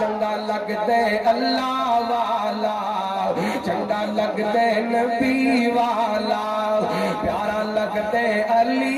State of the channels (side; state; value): both; identical; correlation 1.00